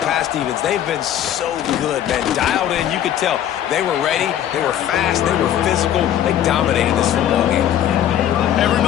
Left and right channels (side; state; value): right; quieter; 10.9 dB